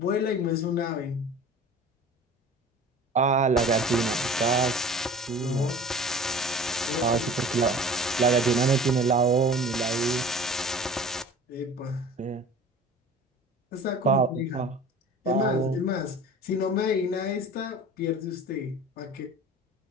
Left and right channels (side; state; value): both; normal; correlation 0.41